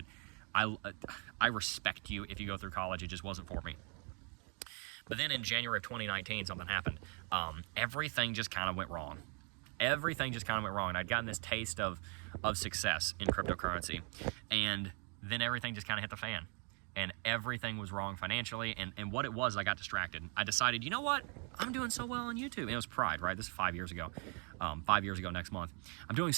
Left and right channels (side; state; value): left; quieter; 37.1 dB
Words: I respect you if you go through college. It just wasn't for me. But then in January of 2019, something happened. Everything just kind of went wrong. Everything just kind of went wrong. And I'd gotten this taste of success in cryptocurrency. And then everything just kind of hit the fan. And everything was wrong financially. And what it was, I got distracted. I decided, you know what? I'm doing so well on YouTube. And it was pride, right? This is 5 years ago. 5 years ago next month. I'm doing